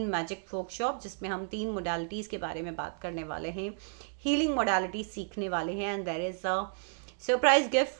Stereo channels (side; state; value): left; silent; digital silence